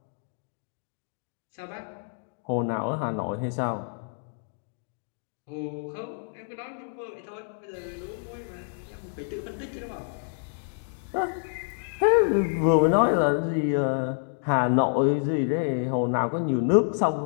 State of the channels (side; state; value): right; silent; digital silence